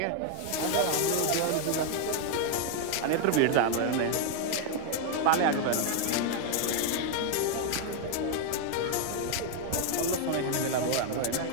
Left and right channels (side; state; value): both; different; correlation 0.00